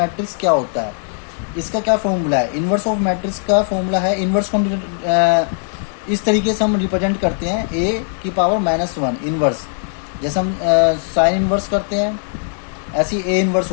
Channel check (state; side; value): silent; right; digital silence